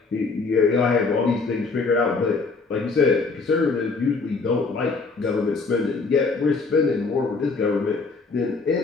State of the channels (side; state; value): right; quieter; 4.2 dB